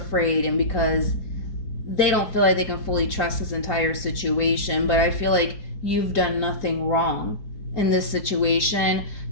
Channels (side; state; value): right; late; 4.7 ms